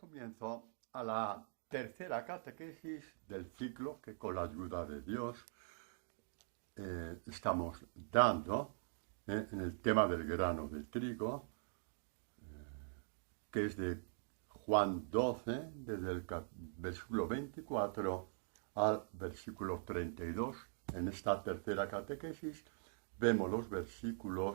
a la tercera catequesis del ciclo que con la ayuda de Dios estamos dando en el tema del grano de trigo, que es de Juan 12, desde el versículo 24 al versículo 32. En esta tercera catequesis vemos los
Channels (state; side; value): silent; left; digital silence